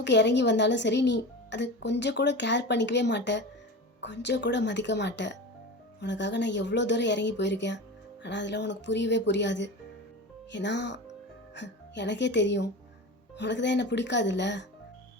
இறங்கி வந்தாலும் சரி, நீ அது கொஞ்சம் கூட கேர் பண்ணிக்கவே மாட்டேன், கொஞ்சம் கூட மதிக்க மாட்டேன். உனக்காக நான் எவ்வளோ தூரம் இறங்கி போயிருக்கேன். ஆனால் அதெல்லாம் உனக்கு புரியவே புரியாது. ஏன்னா எனக்கே தெரியும் உனக்கு தான் என்னை பிடிக்காதுல்ல.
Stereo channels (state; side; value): normal; both; correlation 0.29